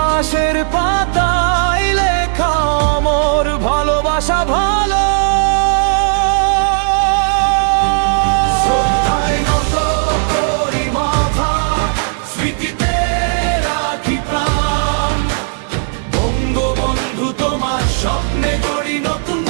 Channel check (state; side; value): silent; left; digital silence